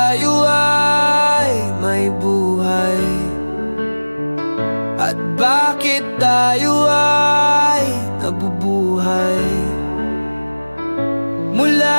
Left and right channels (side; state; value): both; inverted; correlation -1.00